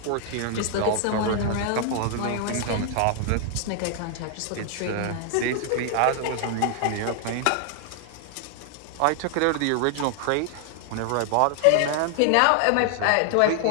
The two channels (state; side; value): different; both; correlation 0.00